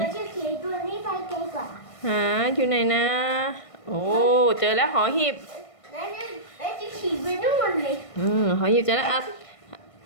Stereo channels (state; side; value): late; right; 1.5 ms